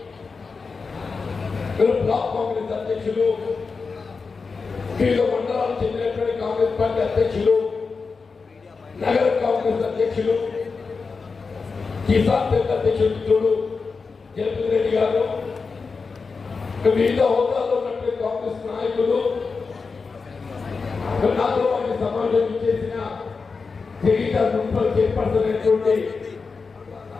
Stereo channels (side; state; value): right; quieter; 4.7 dB